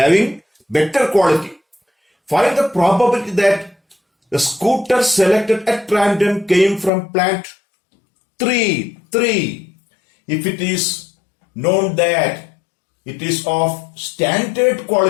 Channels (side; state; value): right; drops out; at 6.9 s